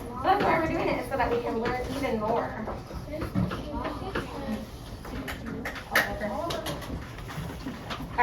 That's why we're doing it, is so that we can learn even more.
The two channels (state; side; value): identical; both; correlation 1.00